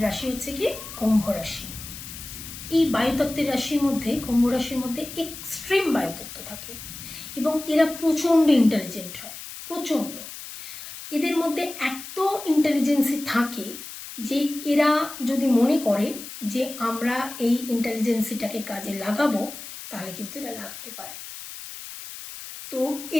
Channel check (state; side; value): noise; left; hiss, 12 dB below the sound